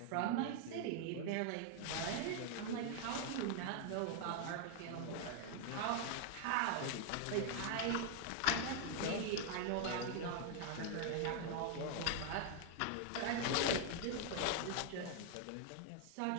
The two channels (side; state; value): both; different; correlation 0.00